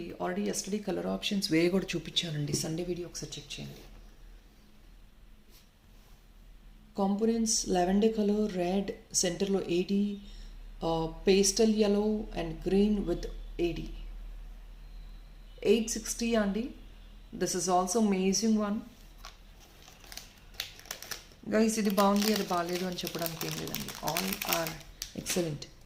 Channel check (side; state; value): both; identical; correlation 1.00